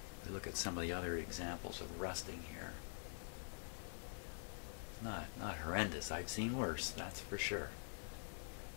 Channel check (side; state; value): right; silent; digital silence